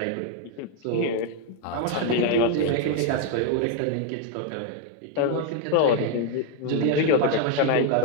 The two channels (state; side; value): different; both; correlation 0.01